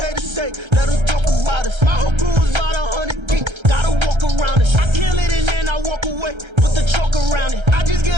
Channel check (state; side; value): late; left; 1.3 ms